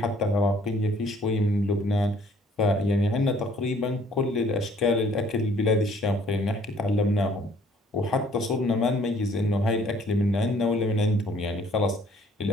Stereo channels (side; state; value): both; normal; correlation 0.59